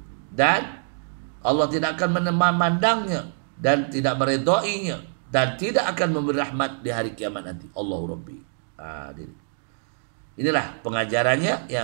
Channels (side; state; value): left; silent; digital silence